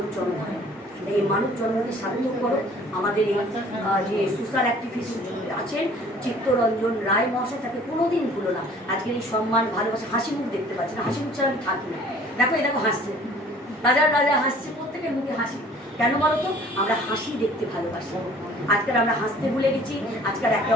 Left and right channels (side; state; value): both; normal; correlation 0.52